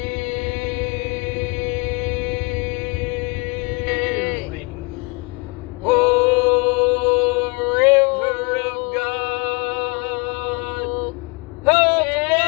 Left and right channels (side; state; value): right; quieter; 29.1 dB